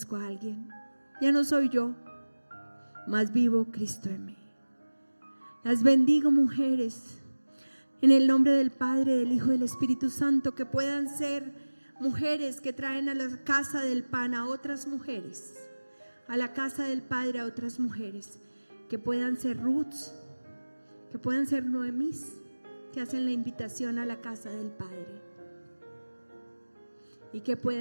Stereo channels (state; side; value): inverted; both; correlation -1.00